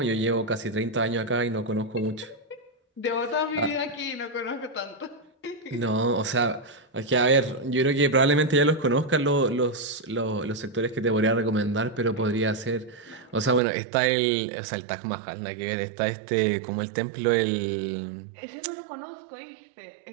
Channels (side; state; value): left; drops out; at 13.6 s